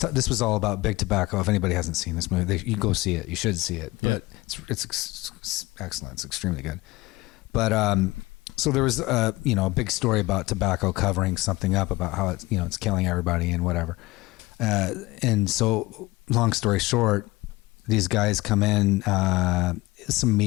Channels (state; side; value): quieter; right; 20.8 dB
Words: was all about big tobacco. If anybody hasn't seen this movie, you go see it. You should see it, but it's excellent. It's extremely good. But so there was a big story about tobacco covering something up about how it's killing everybody and whatever. And so long story short, these guys come in, some